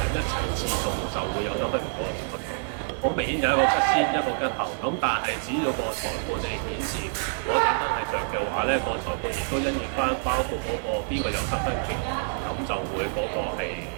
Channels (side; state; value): left; silent; digital silence